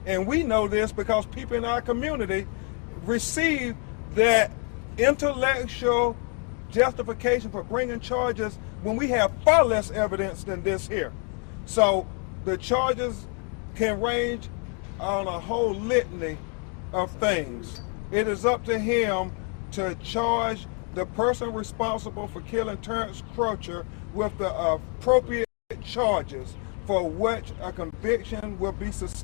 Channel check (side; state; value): right; quieter; 39.2 dB